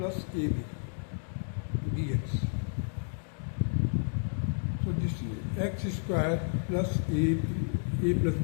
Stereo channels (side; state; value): right; silent; digital silence